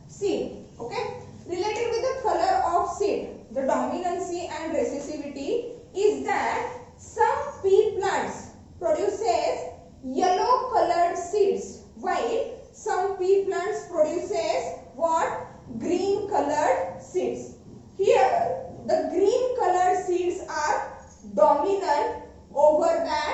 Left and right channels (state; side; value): identical; both; correlation 1.00